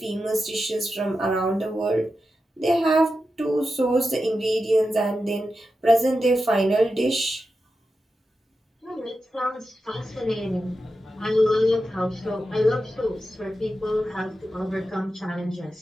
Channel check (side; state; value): both; normal; correlation 0.90